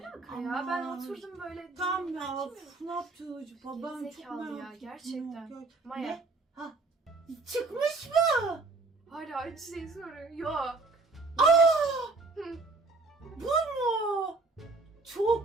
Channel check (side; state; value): left; quieter; 3.6 dB